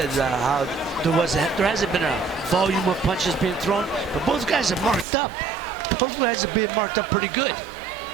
how there hasn't been a volume of punches being thrown, but both guys are marked up. Both guys are being marked up pretty good.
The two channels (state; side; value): drops out; left; at 5.1 s